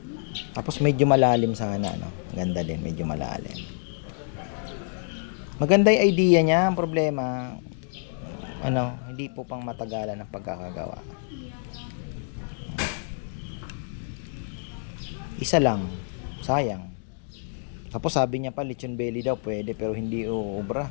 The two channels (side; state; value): right; silent; digital silence